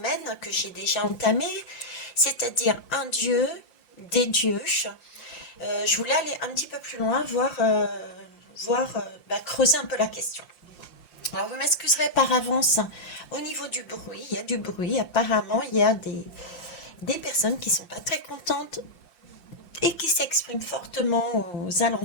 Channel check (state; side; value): late; right; 5.7 ms